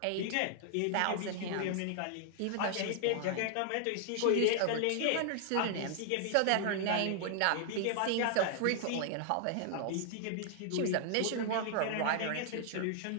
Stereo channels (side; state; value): both; different; correlation -0.01